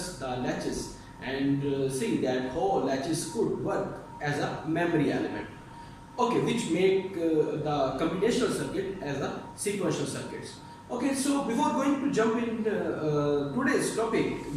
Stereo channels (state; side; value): identical; both; correlation 1.00